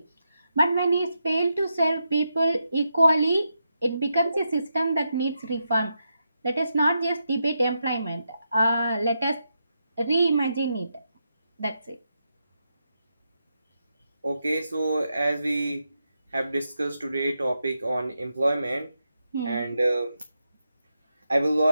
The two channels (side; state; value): both; inverted; correlation -0.85